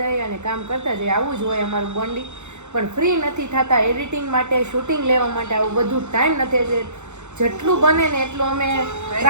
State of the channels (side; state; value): left; late; 0.83 ms